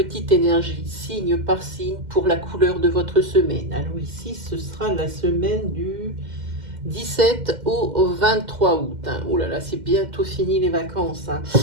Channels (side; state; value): left; late; 2.1 ms